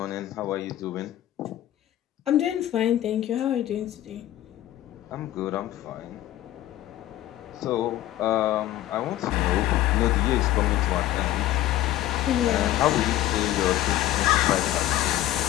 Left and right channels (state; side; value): quieter; right; 13.9 dB